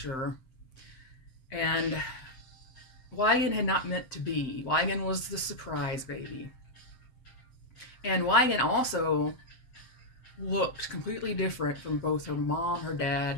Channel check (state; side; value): late; right; 7.7 ms